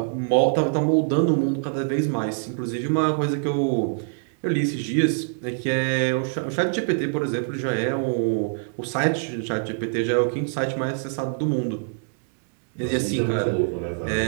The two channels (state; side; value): silent; left; digital silence